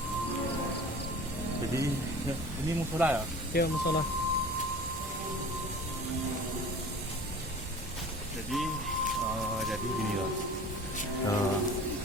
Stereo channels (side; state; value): both; normal; correlation 0.41